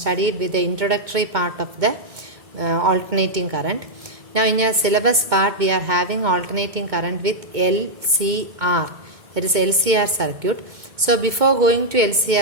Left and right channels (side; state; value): left; late; 2.1 ms